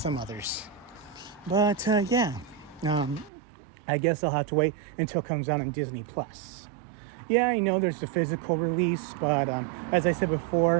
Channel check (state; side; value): drops out; left; at 3.3 s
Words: others. But yeah, I guess I'll have to wait until it comes out on Disney Plus. Yeah, I know there's the physical release, but as I said